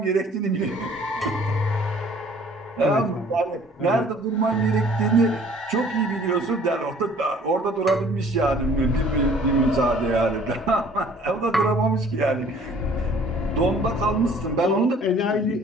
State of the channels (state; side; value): normal; both; correlation 0.54